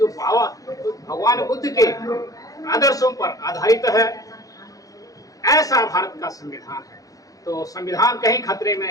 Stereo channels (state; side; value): late; right; 0.17 ms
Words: भगवान बुद्ध के आदर्शों पर आधारित है। ऐसा भारत का संविधान है। तो संविधान कहीं खतरे में